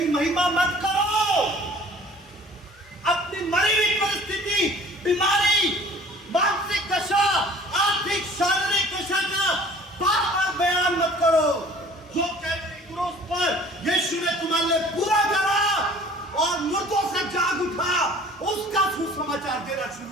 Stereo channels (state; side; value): normal; both; correlation 0.50